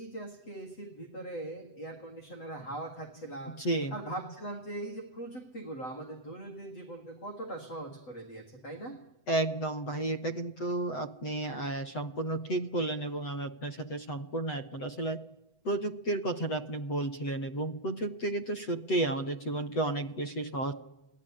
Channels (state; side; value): late; right; 8.0 ms